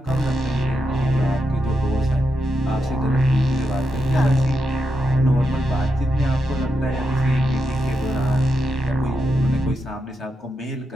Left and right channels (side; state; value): both; normal; correlation 0.85